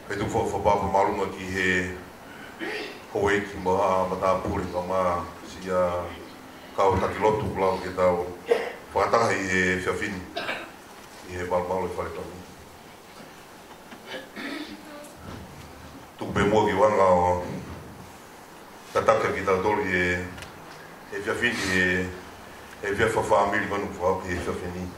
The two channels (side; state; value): both; identical; correlation 1.00